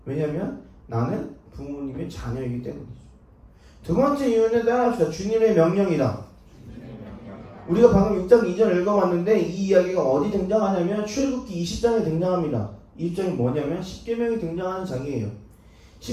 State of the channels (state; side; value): identical; both; correlation 1.00